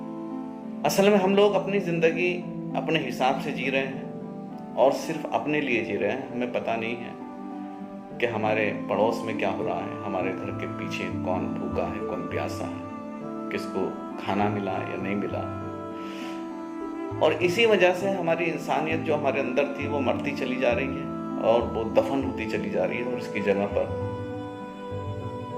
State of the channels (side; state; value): both; identical; correlation 1.00